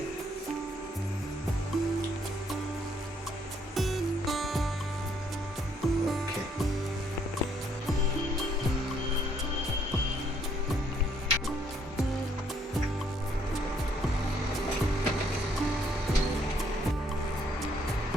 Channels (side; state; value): both; normal; correlation 0.68